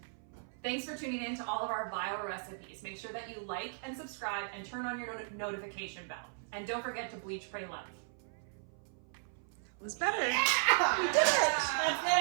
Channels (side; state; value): left; silent; 54 dB below the other